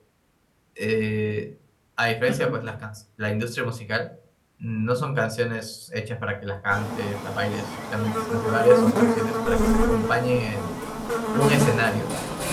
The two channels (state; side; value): identical; both; correlation 1.00